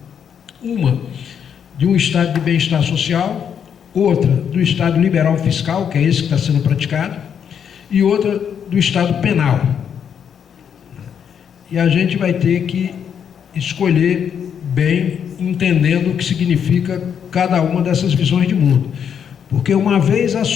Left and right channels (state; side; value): quieter; right; 8.0 dB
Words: Uma de um estado de bem-estar social, outra do estado liberal fiscal, que é esse que está sendo praticado, e outra do estado penal. E a gente vai ter que escolher bem, entendendo o que significa cada uma dessas visões de mundo. Porque uma vez